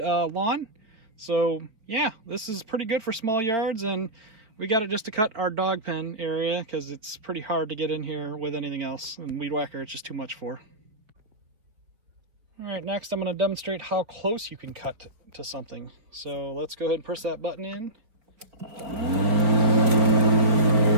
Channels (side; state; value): left; late; 4.7 ms